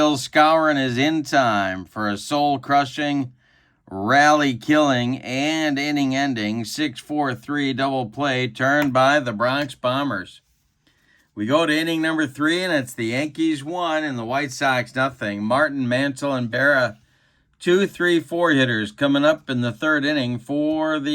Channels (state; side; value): identical; both; correlation 1.00